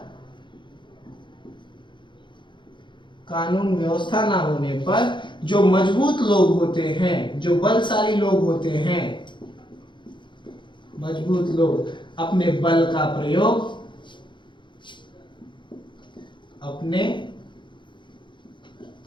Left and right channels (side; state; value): right; late; 0.23 ms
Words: कानून व्यवस्था ना होने पर जो मजबूत लोग होते हैं, जो बलशाली लोग होते हैं, मजबूत लोग अपने बल का प्रयोग, अपने